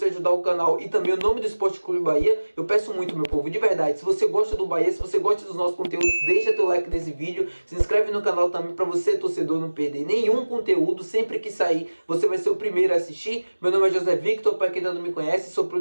ajudar o canal e também o nome do Esporte Clube Bahia. Eu peço muito, meu povo, de verdade, se você gosta do Bahia, se você gosta dos nossos conteúdos, deixa teu like nesse vídeo, se inscreve no canal também para você, torcedor, não perder nenhum conteúdo. Sempre que sair, você vai ser o primeiro a assistir. Meu nome é José Victor, para quem ainda não me conhece, sou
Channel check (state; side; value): inverted; both; correlation -1.00